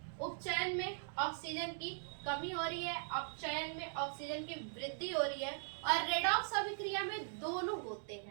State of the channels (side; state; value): left; silent; digital silence